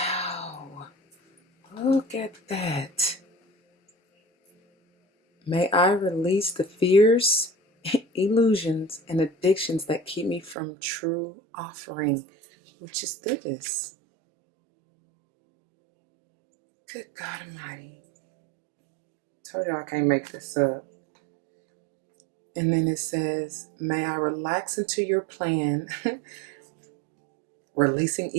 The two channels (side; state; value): left; drops out; at 10.6 s